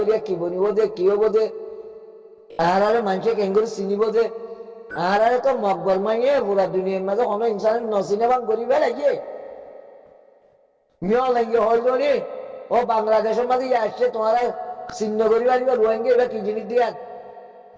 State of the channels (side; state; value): both; identical; correlation 1.00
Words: কি বনিব দে কি হবো দে আহারে মানুষে কেঙ্গুরি চিনিব দে আহারে তো মকবল মাইয়ে পুরা দুনিয়ার মাঝে কোনো ইনসানের নচিনে বাং করিবে লাগে মিয়া লাগে হল নি ও বাংলাদেশের মাঝে আসছে তোমার চিহ্ন করিবা দিবা রোহিঙ্গা এবার কি জিনিস দিয়া